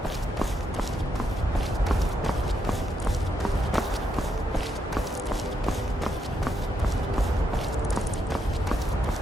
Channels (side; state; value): both; normal; correlation 0.79